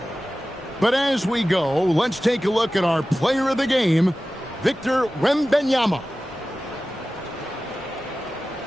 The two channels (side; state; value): both; normal; correlation 0.95